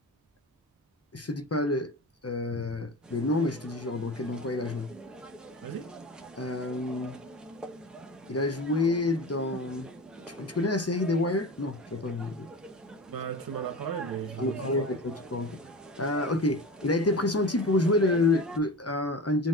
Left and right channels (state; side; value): normal; both; correlation 0.32